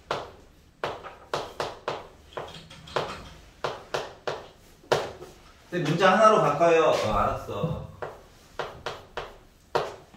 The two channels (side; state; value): both; identical; correlation 1.00